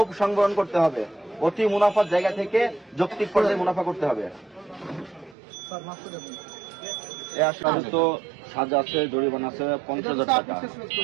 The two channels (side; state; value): left; drops out; at 5.4 s